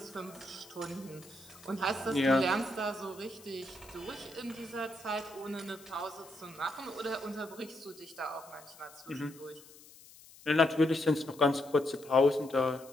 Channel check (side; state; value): left; noise; hiss, 21 dB below the sound